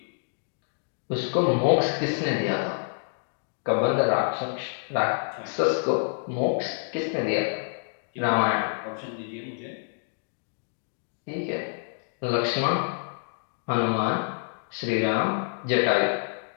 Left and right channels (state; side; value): silent; right; digital silence